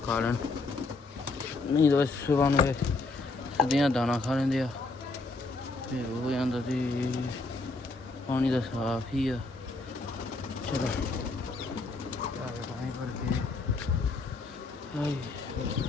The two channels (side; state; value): right; quieter; 3.5 dB